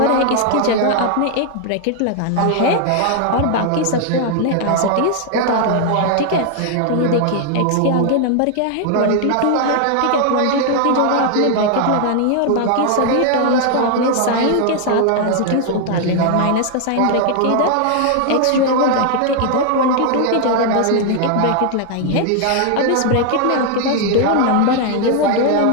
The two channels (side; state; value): both; different; correlation 0.00